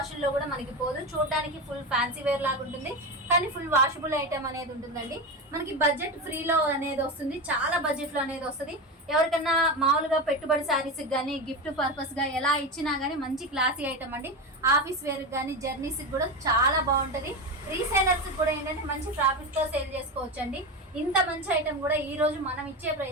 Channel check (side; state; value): both; normal; correlation 0.19